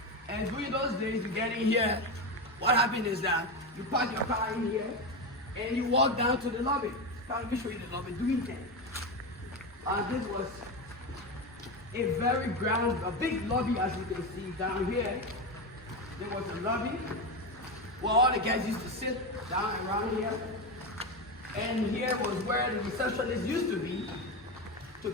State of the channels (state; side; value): normal; both; correlation 0.16